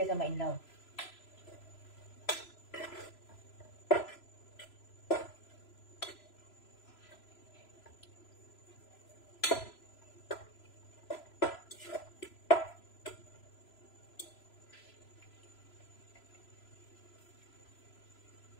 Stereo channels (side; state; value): right; late; 3.0 ms